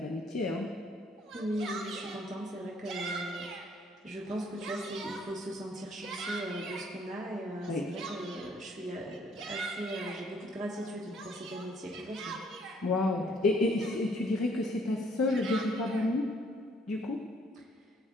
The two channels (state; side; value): normal; both; correlation 0.63